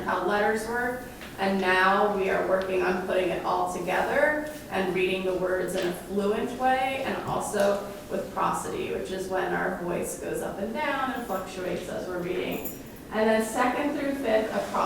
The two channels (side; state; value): both; identical; correlation 1.00